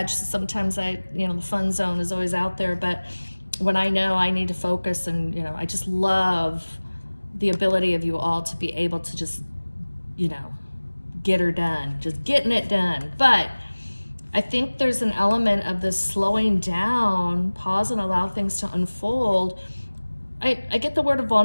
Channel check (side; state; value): both; inverted; correlation -1.00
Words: so sometimes the fun zone is always out there, but when I know I need to focus and, I just love the ability of you all to be able to just, get her done, just getting it done. But I think there's an element of this slowing down, pause and allow things to unfold. I get the word of